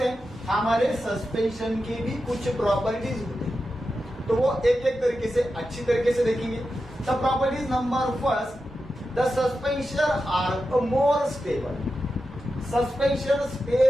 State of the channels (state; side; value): normal; both; correlation 0.90